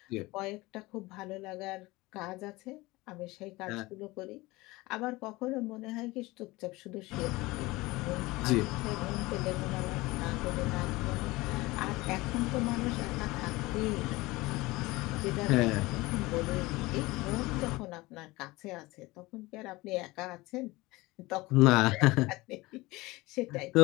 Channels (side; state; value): right; quieter; 21.1 dB